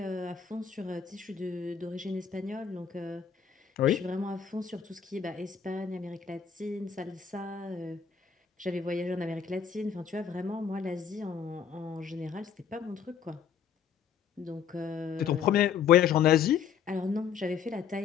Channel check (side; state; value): right; quieter; 7.3 dB